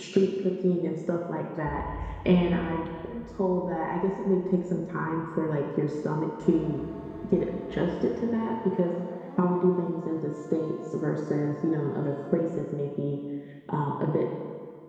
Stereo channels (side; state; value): both; identical; correlation 1.00